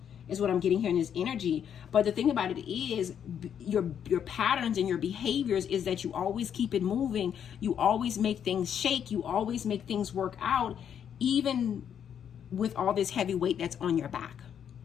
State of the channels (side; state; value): right; quieter; 8.6 dB